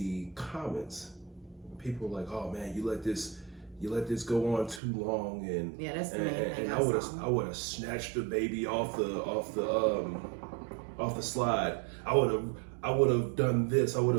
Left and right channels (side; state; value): left; drops out; at 4.8 s